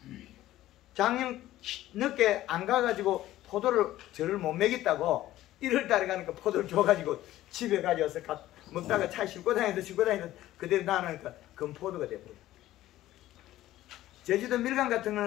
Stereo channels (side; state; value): right; quieter; 14.7 dB